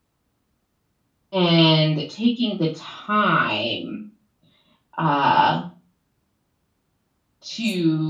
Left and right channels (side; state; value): both; identical; correlation 1.00